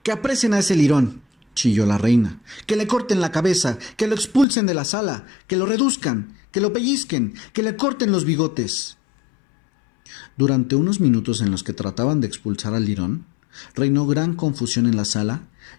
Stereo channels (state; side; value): drops out; right; at 4.5 s